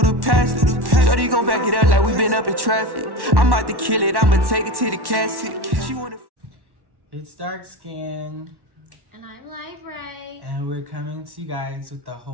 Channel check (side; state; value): left; late; 1.1 ms